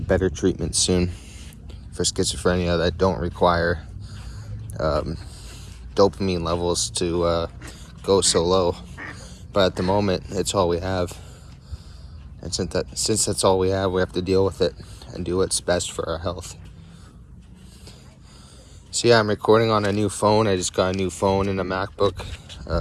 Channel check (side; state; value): both; identical; correlation 1.00